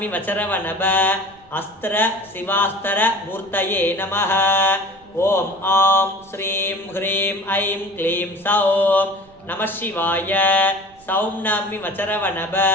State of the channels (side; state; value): right; noise; rumble, 28 dB below the sound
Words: मचरवनभ अस्त्र शिवास्त्र मूर्तये नमः ओम आं श्रीं ह्रीं ऐं क्लीं सौं नमः शिवाय सौं नमि मचरवनभ